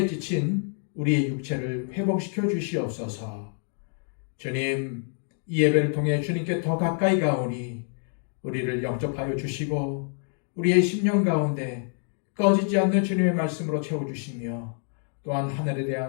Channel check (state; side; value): silent; right; 56 dB below the other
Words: 지친 우리의 육체를 회복시켜 주시옵소서. 주님, 이 예배를 통해 주님께 더 가까이 가오니 우리를 영접하여 주시고 우리의 심령 가운데 꺼지지 않는 주님의 말씀으로 채워주시며 또한 하늘에